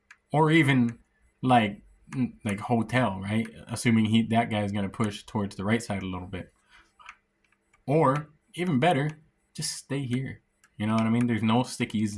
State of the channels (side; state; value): both; identical; correlation 1.00